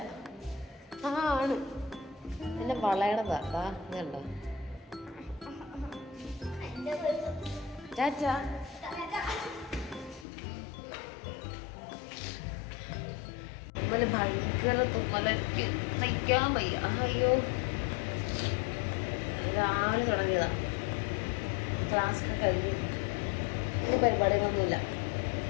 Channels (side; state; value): right; drops out; at 10.2 s